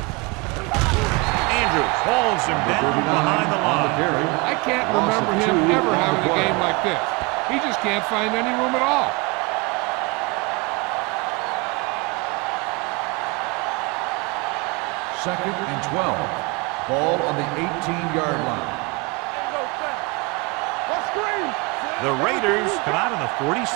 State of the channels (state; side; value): quieter; left; 26.8 dB